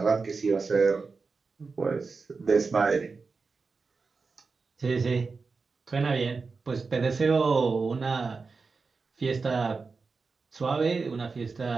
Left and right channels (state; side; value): quieter; left; 4.5 dB